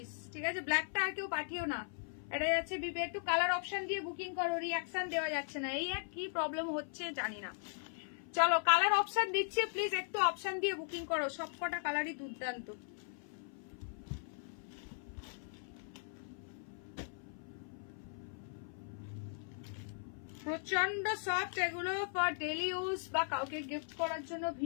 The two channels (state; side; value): silent; right; 52 dB below the other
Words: ঠিক আছে, ব্ল্যাকটা আর কেউ পাঠিও না, এটা যাচ্ছে বিপি। একটু কালার অপশন দিয়ে বুকিং করো, রিঅ্যাকশন দেওয়া যাচ্ছে না, এই এক কি প্রবলেম হচ্ছে জানি না। চলো কালার অপশন দিচ্ছি, প্লিজ একটু অপশন দিয়ে বুকিং করো, সবকটা কালারই দুর্দান্ত। প্রচন্ড সফট এগুলো, ফর ডেলি ইউজ বা কাউকে गिफ्ट করার জন্য